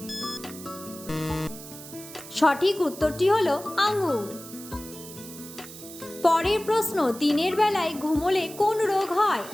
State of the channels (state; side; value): noise; right; hiss, 15 dB below the sound